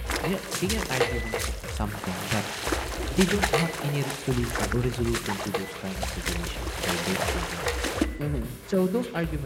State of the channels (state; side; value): identical; both; correlation 1.00